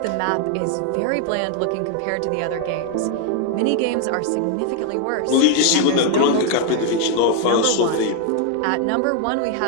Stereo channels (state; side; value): different; both; correlation 0.00